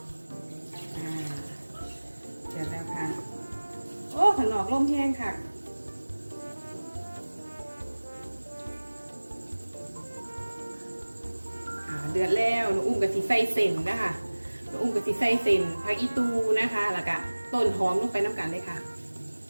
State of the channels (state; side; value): inverted; both; correlation -1.00